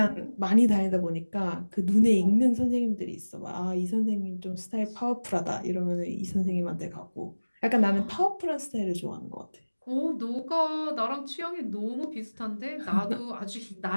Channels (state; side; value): inverted; both; correlation -1.00